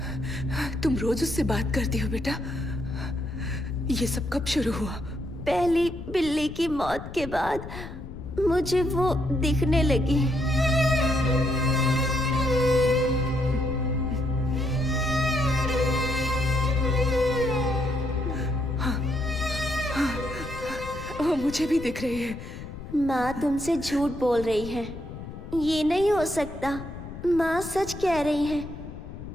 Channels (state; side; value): noise; left; rumble, 11 dB below the sound